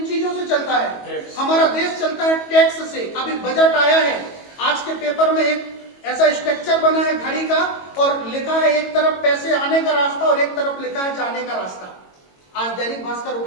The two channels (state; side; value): late; right; 22 ms